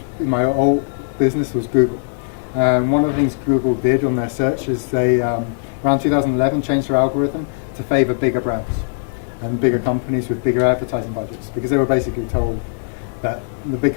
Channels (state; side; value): silent; right; digital silence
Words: in my old business was Google. One of the things Google did on their search is they, around 2011, changed their algorithm to favor bigger brands and bigger companies with bigger advertising budgets, because they were basically told that the big